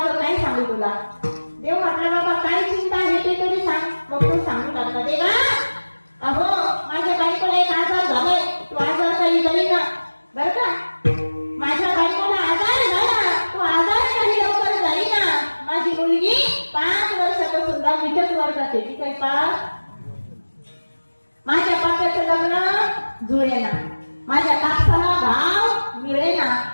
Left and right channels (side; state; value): both; inverted; correlation -1.00